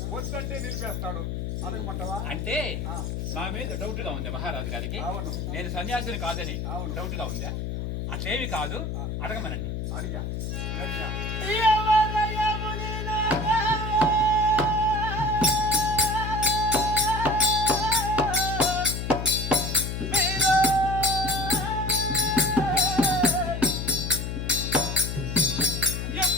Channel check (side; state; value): left; noise; hum, 4 dB below the sound